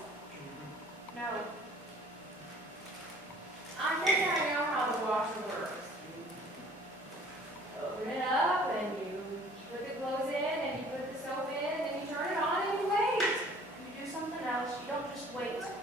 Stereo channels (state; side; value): normal; both; correlation 0.52